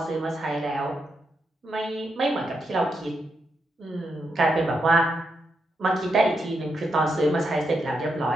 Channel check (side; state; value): both; normal; correlation 0.83